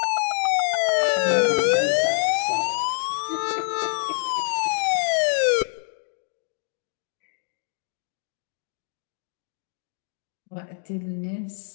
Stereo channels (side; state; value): right; silent; 55 dB below the other